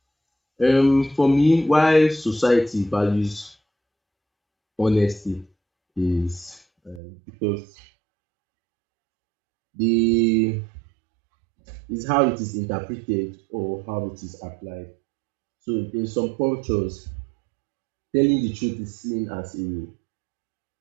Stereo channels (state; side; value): drops out; left; at 7.0 s